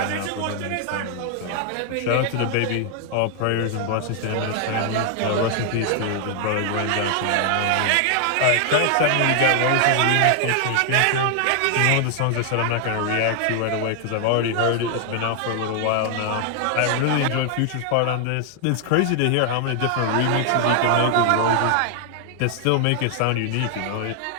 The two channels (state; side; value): different; both; correlation 0.00